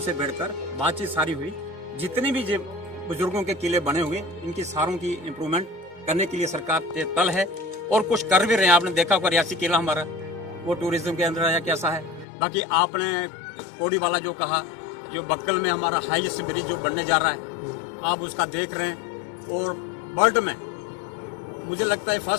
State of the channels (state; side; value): drops out; right; at 12.2 s